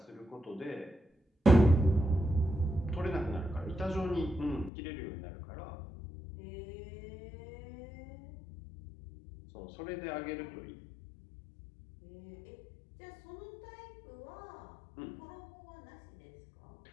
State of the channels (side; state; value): right; drops out; at 4.7 s